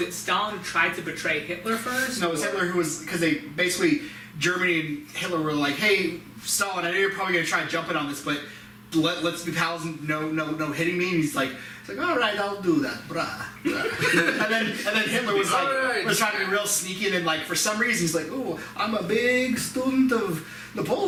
it Stalin who tried to betray Hitler first? No, it was Hitler who was, because they basically, Germany and Hitler were like, hey, Stalin, I know you're probably going to try and jump in on this, but let's be pals and no hitting me. And he's like, all right, I'll do that, brah. and then Hitler was like, Alright. was trying to be real sneaky, and then like for some reason he's like, oh, I'm a big student of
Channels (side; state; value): both; identical; correlation 1.00